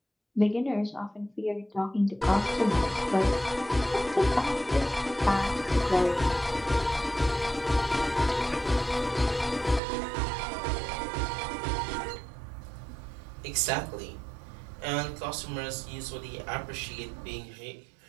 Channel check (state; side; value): drops out; left; at 9.8 s